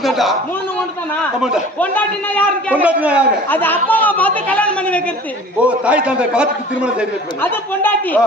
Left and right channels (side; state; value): both; normal; correlation 0.44